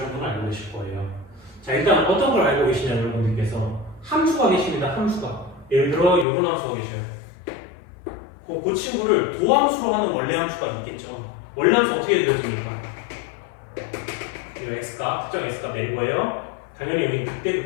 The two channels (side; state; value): right; drops out; at 6.2 s